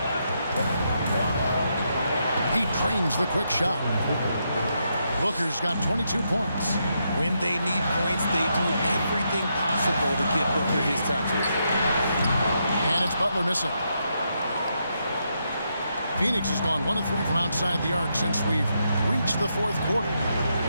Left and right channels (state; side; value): inverted; both; correlation -0.81